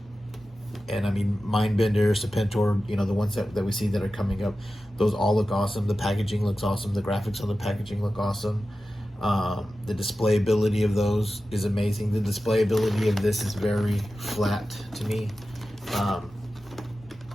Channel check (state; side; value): normal; both; correlation 0.93